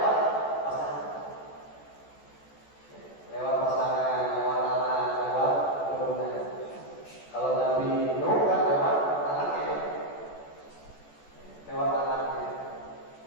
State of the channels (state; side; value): late; right; 14 ms